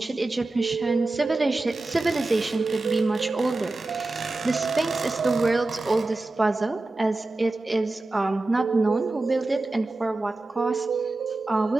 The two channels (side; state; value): left; quieter; 3.1 dB